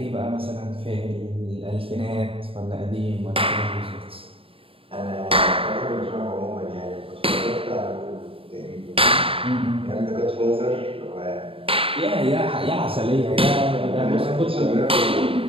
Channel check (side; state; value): left; late; 0.27 ms